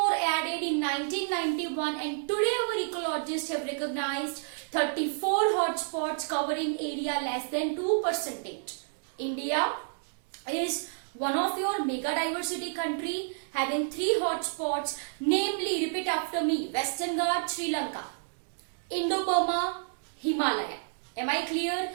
added in 1991, and today our ecologists have recognized 34 hotspots covering area less than 2%. India is one of your mega diversity country having 3 hotspots, namely, repeat after me, Western Ghats, Sri Lanka, Indo-Burma, Himalaya. Am I clear?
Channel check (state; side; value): silent; left; digital silence